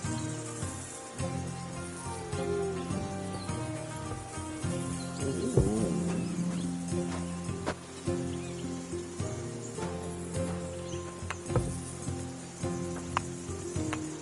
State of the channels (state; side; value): identical; both; correlation 1.00